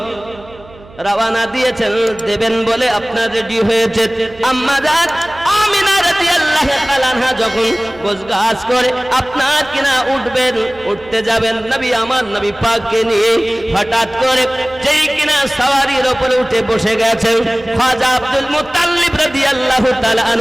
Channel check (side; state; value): right; noise; hum, 22 dB below the sound